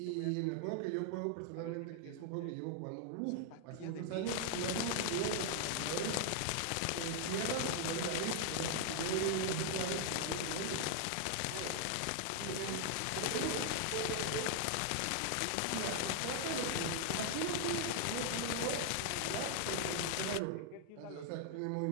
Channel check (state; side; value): different; both; correlation 0.00